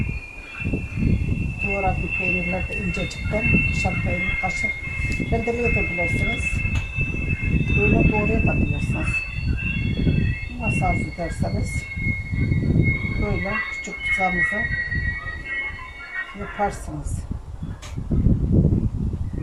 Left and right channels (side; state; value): both; identical; correlation 1.00